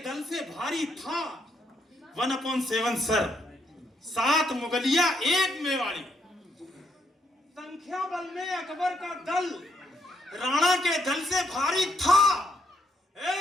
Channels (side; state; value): both; normal; correlation 0.76